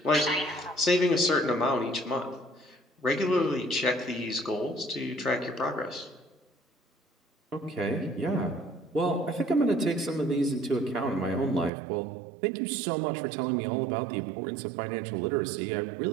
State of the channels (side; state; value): left; drops out; at 11.7 s